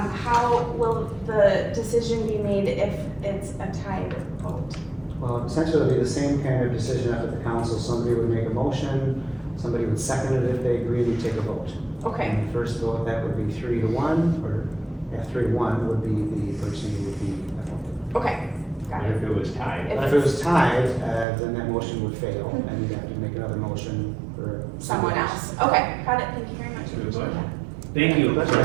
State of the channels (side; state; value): left; drops out; at 21.2 s